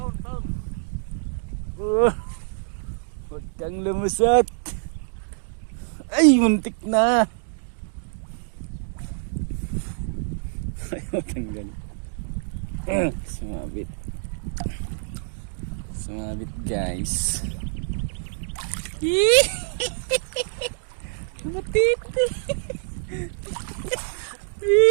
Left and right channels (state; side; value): silent; left; digital silence